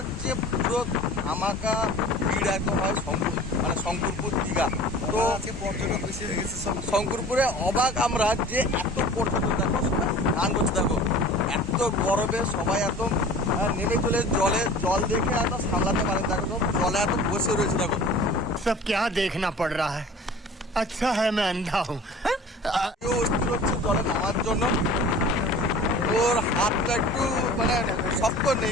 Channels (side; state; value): both; normal; correlation 0.43